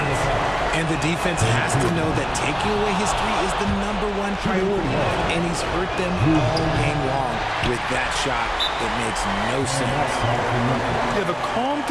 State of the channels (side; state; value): both; identical; correlation 1.00